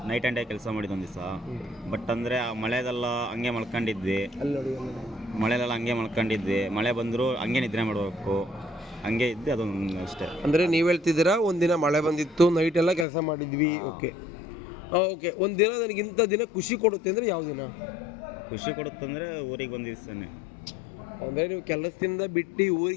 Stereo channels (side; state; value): right; drops out; at 13.1 s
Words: ನೈಟ್ ಆ್ಯಂಡ್ ಡೇ ಕೆಲಸ ಮಾಡಿದ್ದು ಒಂದು ದಿವಸ. ಬಟ್ ಅಂದರೆ ಆ ಮಳೆದೆಲ್ಲ ಹಂಗೆ ಮಲ್ಕೊಂಡಿದ್ವಿ, ಮಳೆಲೆಲ್ಲ ಹಂಗೆ ಮಲ್ಕೊಂಡಿದ್ವಿ, ಮಳೆ ಬಂದರೂ ಹಂಗೆ ನಿದ್ರೆ ಮಾಡಬೇಕು, ಹಂಗೆ ಇದ್ದೆ, ಅದೊಂದು ಅಷ್ಟೇ. ಅಂದರೆ ನೀವು ಹೇಳ್ತಿದ್ದೀರಾ ಒಂದಿನ ಮಳೆ ಬಂದಿತ್ತು, ನೈಟ್ ಎಲ್ಲ ಕೆಲಸ ಮಾಡಿದ್ವಿ. ಓಕೆ ಓಕೆ, ಒಂದು ದಿನ ನನಗೆ ಇಂಥ ದಿನ ಖುಷಿ ಕೊಡುತ್ತೆ ಅಂದರೆ ಯಾವ ದಿನ ಖುಷಿ ಕೊಡುತ್ತಂದರೆ ಊರಿಗೆ ಬಂದ ದಿವಸನೇ. ಅಂದರೆ ನೀವು ಕೆಲಸದಿಂದ ಬಿಟ್ಟು